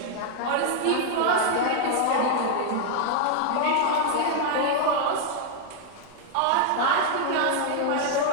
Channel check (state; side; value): different; both; correlation 0.00